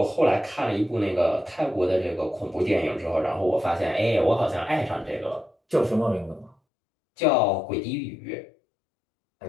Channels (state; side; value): drops out; right; at 6.6 s